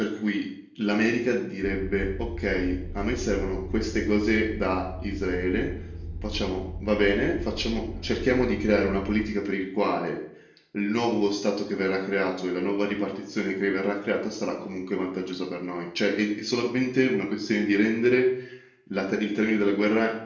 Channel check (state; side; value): identical; both; correlation 1.00